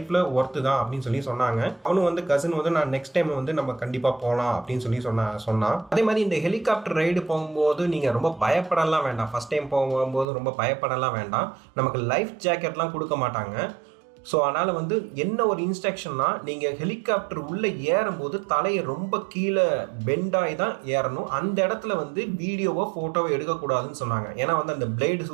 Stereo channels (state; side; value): drops out; left; at 10.2 s